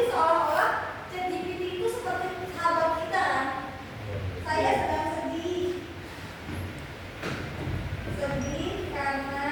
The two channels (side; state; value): both; identical; correlation 1.00